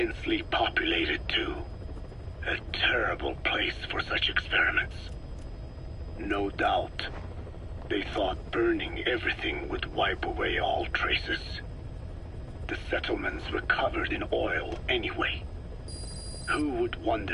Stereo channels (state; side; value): identical; both; correlation 1.00